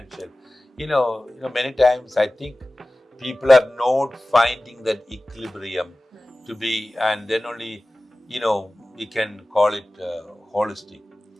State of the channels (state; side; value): normal; both; correlation 0.96